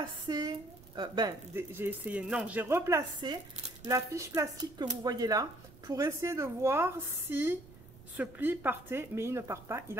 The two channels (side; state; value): right; noise; rumble, 20 dB below the sound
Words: j'ai replacé la fiche plastique que vous voyez là pour essayer de voir si ce pli partait, mais il ne part pas, il est